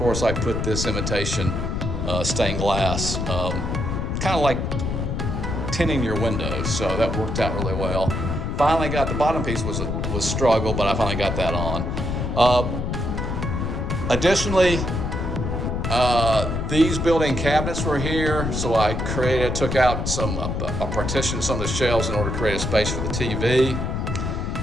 I put this imitation stained glass, kind of like tinting your windows, so that worked out really well. Finally got the bottom piece was struggle, but I finally got that on. Additionally, these built-in cabinets were here, so I took out I partitioned some of the shelves in order to create a space for the TV.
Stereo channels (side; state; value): left; noise; rumble, 2 dB below the sound